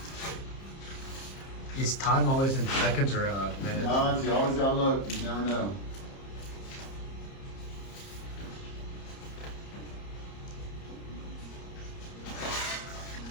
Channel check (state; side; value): late; right; 30 ms